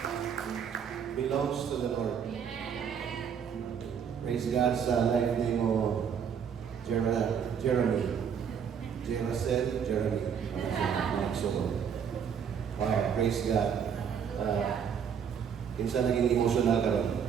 belongs to the Lord. Praise God sa life ni mo, Jeremy. Jeremy. Wow, praise God. Kinsa naging emotional ka rin.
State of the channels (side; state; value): left; quieter; 7.5 dB